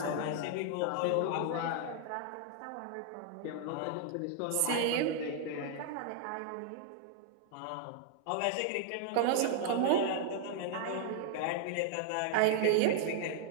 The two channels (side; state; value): both; different; correlation -0.01